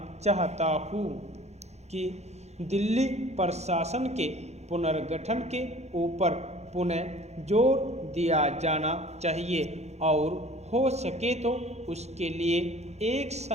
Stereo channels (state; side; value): late; left; 0.32 ms